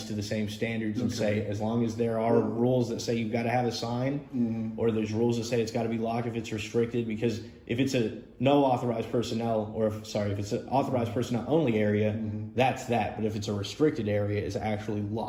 to the same standards and say, as long as there are rules that say you've got to have a sign, or there's rules that say it's got to be locked if it's restricted, because if it's a no authorized personnel, or if it's an authorized personnel only area, that's that. But if it's a restricted area, it's actually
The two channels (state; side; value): identical; both; correlation 1.00